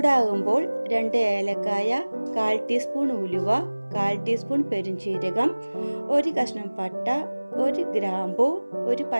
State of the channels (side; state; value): both; inverted; correlation -1.00